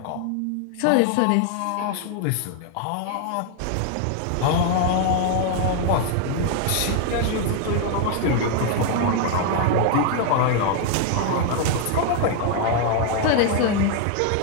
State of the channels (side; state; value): both; different; correlation 0.00